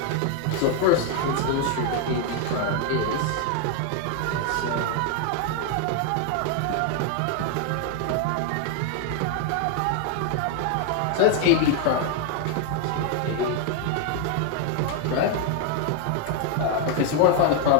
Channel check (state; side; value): different; both; correlation 0.00